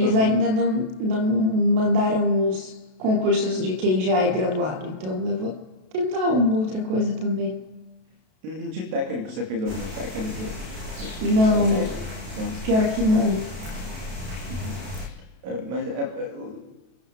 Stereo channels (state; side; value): late; left; 32 ms